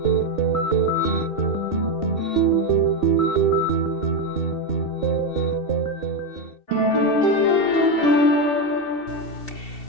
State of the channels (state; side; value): late; right; 2.7 ms